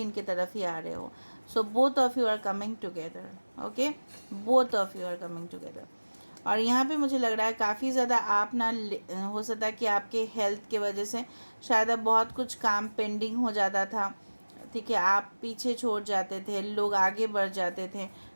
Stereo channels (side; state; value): both; inverted; correlation -1.00